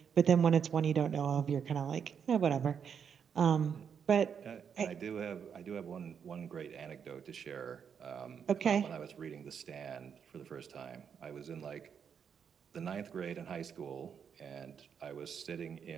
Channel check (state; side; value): quieter; left; 7.3 dB